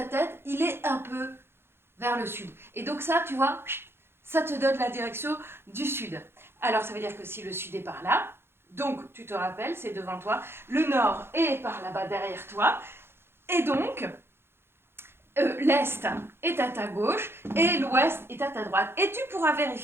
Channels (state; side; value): late; left; 0.11 ms